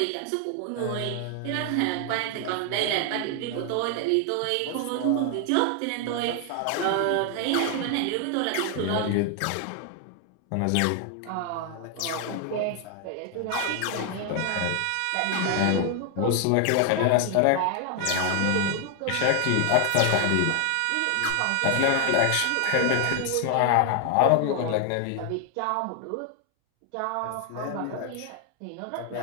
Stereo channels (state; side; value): different; both; correlation 0.00